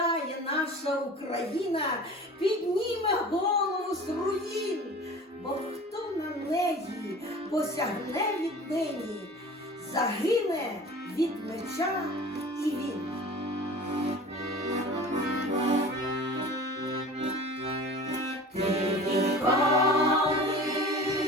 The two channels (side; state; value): both; normal; correlation 0.40